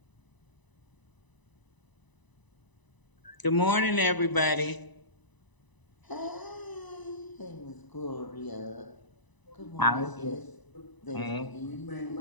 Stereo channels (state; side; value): late; right; 1.0 ms